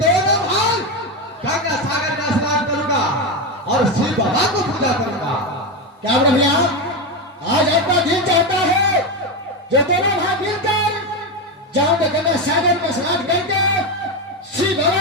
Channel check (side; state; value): both; normal; correlation 0.12